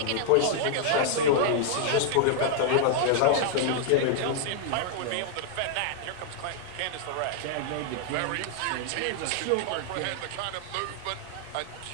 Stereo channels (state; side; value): different; both; correlation 0.00